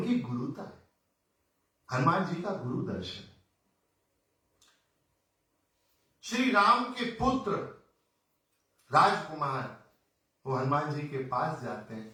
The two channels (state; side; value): identical; both; correlation 1.00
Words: गुरुता है, हनुमान जी का गुरु दर्शन। श्री राम के पुत्र राजकुमार वो हनुमान जी के पास जाते हैं,